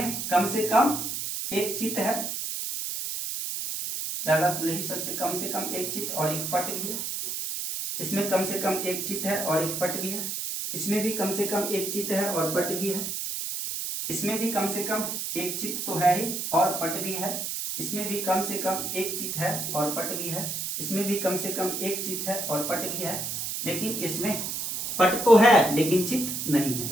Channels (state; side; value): noise; right; hiss, 3 dB below the sound